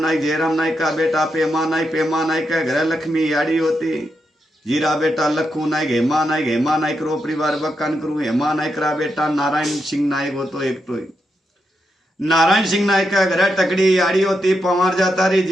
का बेटा पेमा नाइक का घर लक्ष्मी याड़ी होती। जीरा बेटा लखू नाइक हेमा नाइक रो परिवार बखान करू। हेमा नाइक रा बेटा नारायण सिंह नाइक हो तो एक तो नारायण सिंह नाइक का घर टकड़ी याड़ी होती। पवार जाता री।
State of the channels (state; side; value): normal; both; correlation 0.84